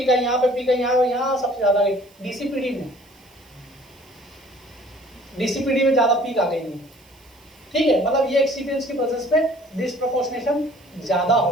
आई, यहाँ पे पीक आई, यहाँ सबसे ज्यादा गई DCPD में ज्यादा पीक आ गई है, ठीक है। मतलब ये एक्सिपिएंट्स की प्रेजेंस पे डिस्प्रोपोर्शनेशन ज्यादा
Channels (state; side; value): noise; right; hiss, 29 dB below the sound